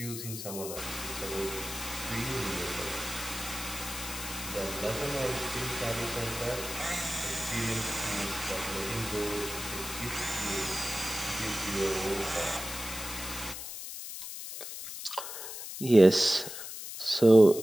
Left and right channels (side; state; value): left; noise; hiss, 8 dB below the sound